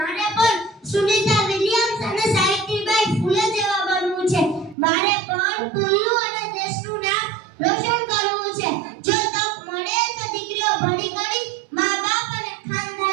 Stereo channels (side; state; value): left; drops out; at 4.8 s